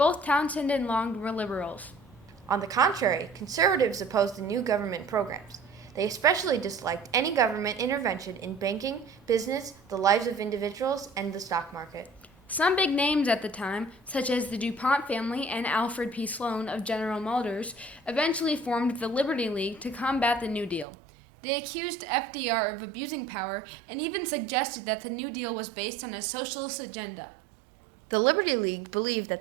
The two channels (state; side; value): drops out; left; at 20.9 s